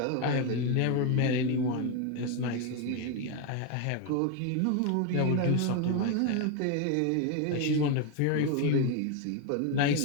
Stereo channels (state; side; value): different; both; correlation 0.01